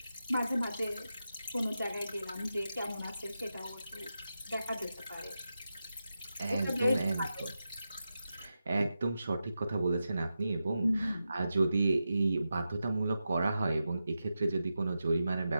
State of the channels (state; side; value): inverted; both; correlation -0.90